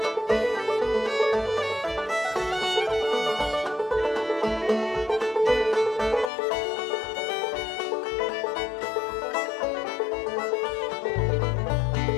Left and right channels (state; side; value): drops out; right; at 6.3 s